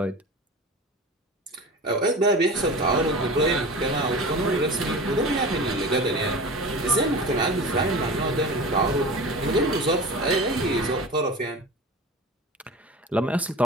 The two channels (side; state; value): both; normal; correlation 0.33